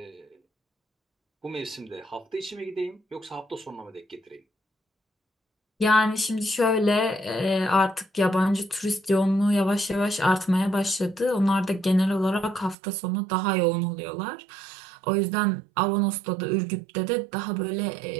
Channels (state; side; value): drops out; left; at 12.8 s